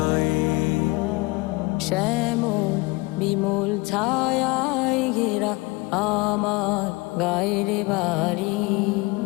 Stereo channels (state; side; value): quieter; right; 24.1 dB